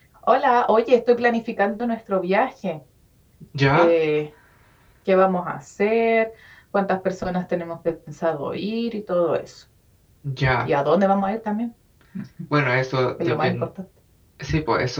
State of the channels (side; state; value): both; identical; correlation 1.00